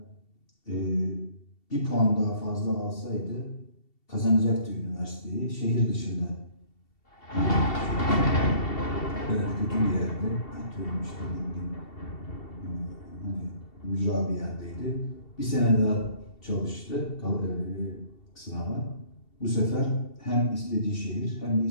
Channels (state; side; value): late; right; 2.7 ms